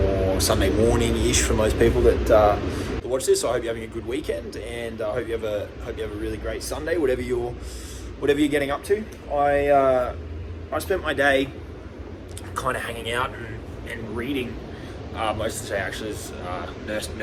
Sunday morning-ish for most people that watch this. So I hope you're having a good weekend, and I hope you have a really great Sunday, whatever you're getting up to. I spent my day kind of hanging out and reading. Most of the day actually is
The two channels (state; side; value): identical; both; correlation 1.00